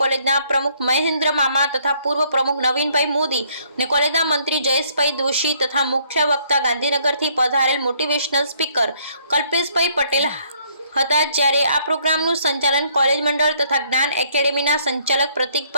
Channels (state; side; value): inverted; both; correlation -0.66